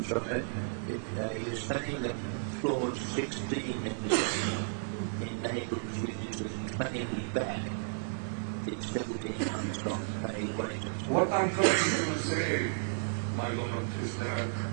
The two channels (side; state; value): left; silent; digital silence